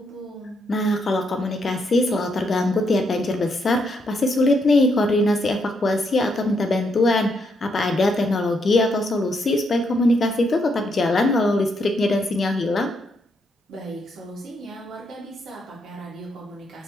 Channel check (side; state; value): both; normal; correlation 0.77